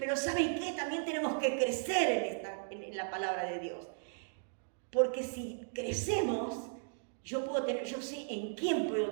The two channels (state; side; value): silent; left; digital silence